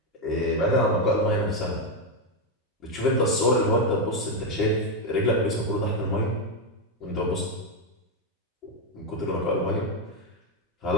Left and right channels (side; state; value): both; normal; correlation 0.05